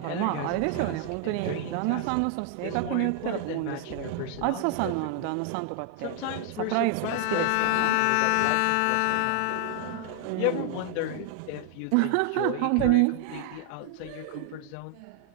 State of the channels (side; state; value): both; different; correlation 0.00